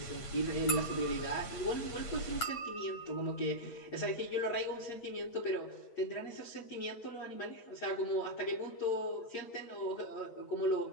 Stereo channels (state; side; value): late; right; 8.6 ms